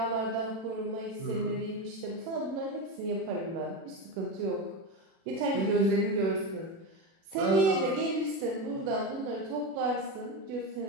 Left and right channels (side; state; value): left; late; 36 ms